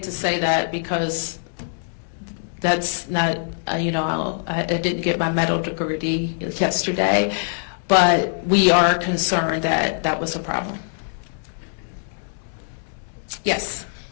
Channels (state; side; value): silent; right; digital silence